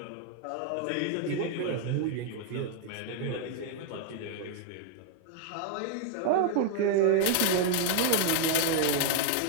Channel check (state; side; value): different; both; correlation 0.00